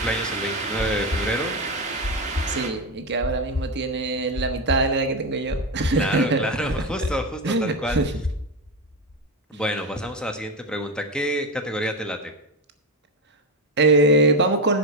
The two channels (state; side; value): normal; both; correlation 0.13